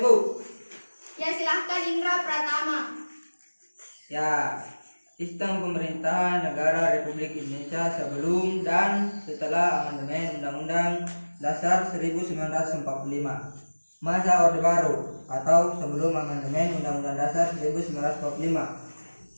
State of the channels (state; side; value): inverted; both; correlation -1.00